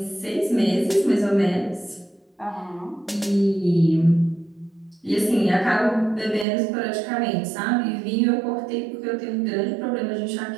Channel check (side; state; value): left; drops out; at 6.5 s